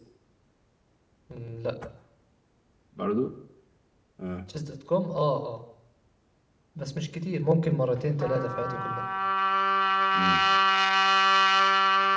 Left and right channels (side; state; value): both; identical; correlation 1.00